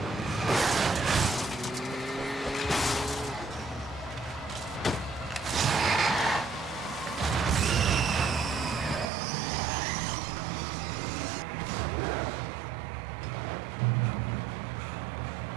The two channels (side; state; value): left; drops out; at 9.1 s